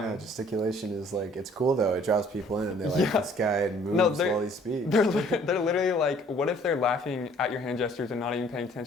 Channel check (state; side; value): normal; both; correlation 0.57